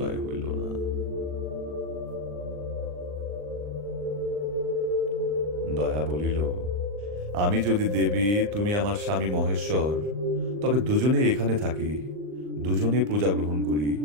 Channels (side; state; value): left; late; 39 ms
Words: হইল না। দয়া বলিল, আমি যদি দেবী, তুমি আমার স্বামী মহেশ্বর, তবে দুজনে এখানে থাকি, দুজনে পূজা গ্রহণ করি,